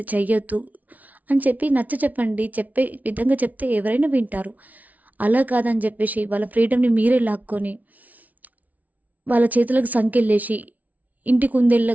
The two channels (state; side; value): late; left; 0.073 ms